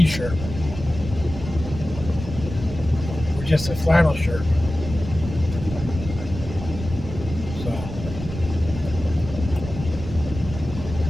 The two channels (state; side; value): noise; right; rumble, 9 dB below the sound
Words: Or just a flannel shirt. So.